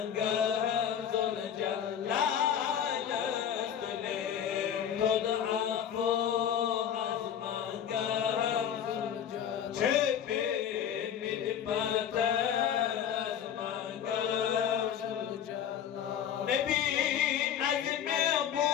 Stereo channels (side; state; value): right; quieter; 9.1 dB